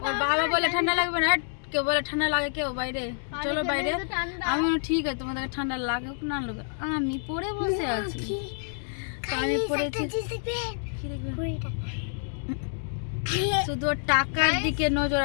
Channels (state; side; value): silent; right; digital silence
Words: ওর বাবা বলে ঠান্ডা লাগবে না। কেউ বলে ঠান্ডা লাগে, কেউ বাইরে চলো বাইরে। আমি বললাম ঠিক আছে, তোমাদেরকে ঠান্ডা লাগুক না লাগুক, আমি পরে বসে আছি। তো আমি পড়েছি শুধু ওর টাকার দিকে নজর।